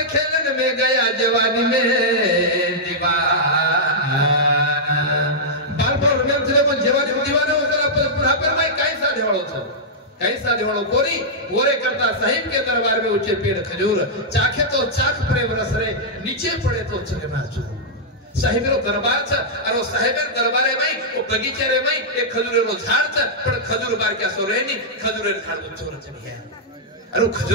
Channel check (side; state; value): both; normal; correlation -0.09